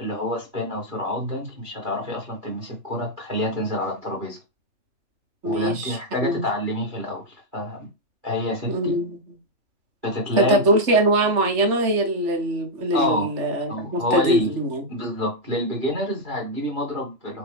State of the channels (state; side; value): late; left; 3.4 ms